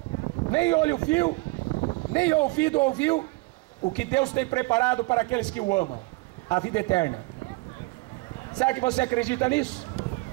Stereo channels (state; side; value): quieter; left; 23.8 dB